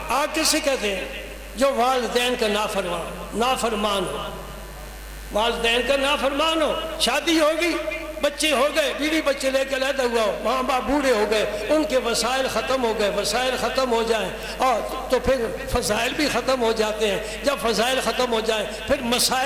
کسے کہتے ہیں؟ جو والدین کا نافرمان ہو، والدین کا نافرمان ہو، شادی ہوگی، بچے ہو گئے، بیوی بچے لے کے علیحدہ ہوا ہو، ماں باپ بوڑھے ہو گئے، ان کے وسائل ختم ہو گئے، وسائل ختم ہو جائیں اور تو پھر فضائل بھی ختم ہو جاتے ہیں۔ جب فضائل ختم ہو جائیں پھر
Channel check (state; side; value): identical; both; correlation 1.00